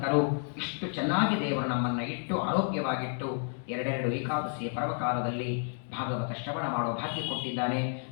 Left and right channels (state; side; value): silent; right; 57 dB below the other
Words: ಇಷ್ಟು ಚೆನ್ನಾಗಿ ದೇವರು ನಮ್ಮನ್ನು ಇಟ್ಟು ಆರೋಗ್ಯವಾಗಿಟ್ಟು 2 ಏಕಾದಶಿಯ ಪರ್ವಕಾಲದಲ್ಲಿ ಭಾಗವತ ಶ್ರವಣ ಮಾಡೋ ಭಾಗ್ಯ ಕೊಟ್ಟಿದ್ದಾನೆ.